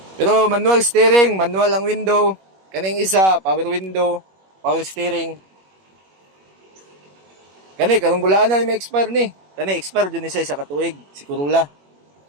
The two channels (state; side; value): late; left; 21 ms